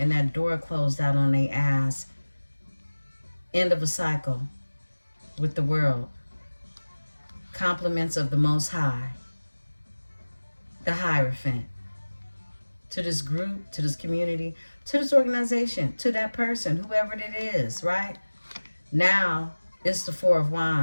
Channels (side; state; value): both; inverted; correlation -1.00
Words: that door closed out on their ass. End of a cycle with the world. Compliments of the Most High, the Hierophant, to this group, to this community, to this organization, to that person, whoever it is, right? Now, it's the 4 of